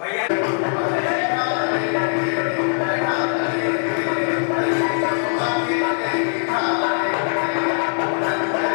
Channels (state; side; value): silent; right; digital silence